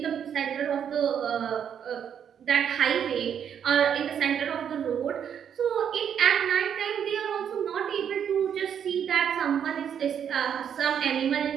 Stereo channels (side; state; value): left; quieter; 8.4 dB